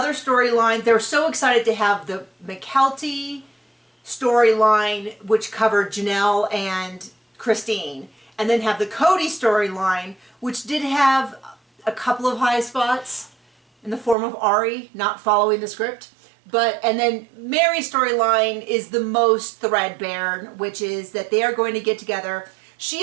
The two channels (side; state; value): left; drops out; at 14.2 s